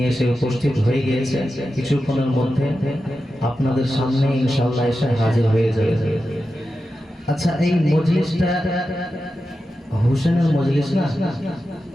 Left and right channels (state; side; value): normal; both; correlation 0.91